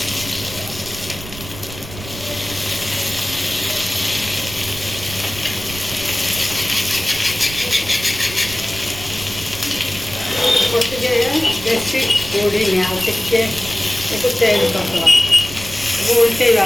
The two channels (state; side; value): noise; right; rumble, 13 dB below the sound